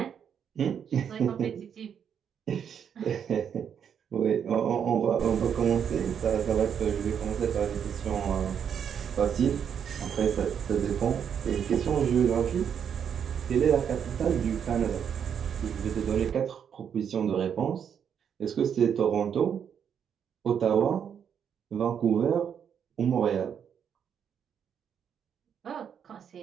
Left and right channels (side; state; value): left; quieter; 8.0 dB